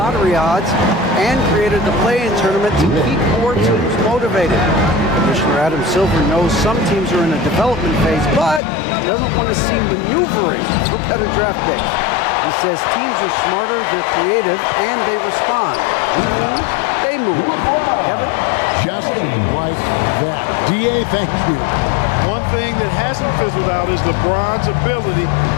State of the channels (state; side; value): drops out; right; at 8.6 s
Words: odds and created the play-in tournament to keep more teams motivated. Commissioner Adam Silver knows some teams are in a development phase, but doesn't want to see maneuvering for better draft picks. He says teams are smarter, they're creative, and they respond. We move, they move. Kevin? Just like that. DA, thank you. One thing that hasn't fizzled out is LeBron's ability